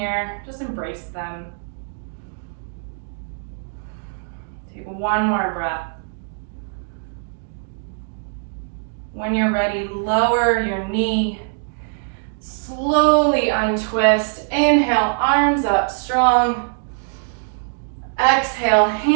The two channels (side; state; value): left; silent; digital silence